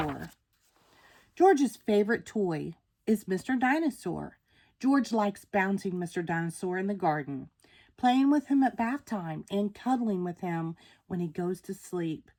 George's favorite toy is Mr. Dinosaur. George likes bouncing Mr. Dinosaur in the garden, playing with him at bath time, and cuddling with him when he goes to sleep.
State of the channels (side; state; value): both; identical; correlation 1.00